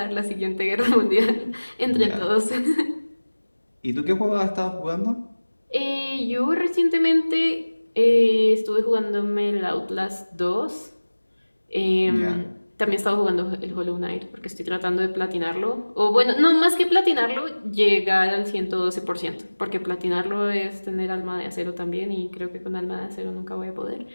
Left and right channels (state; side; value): inverted; both; correlation -1.00